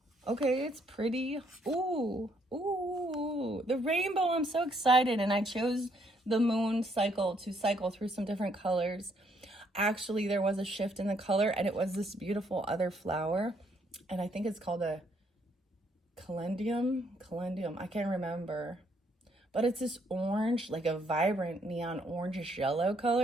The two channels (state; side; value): normal; both; correlation 0.70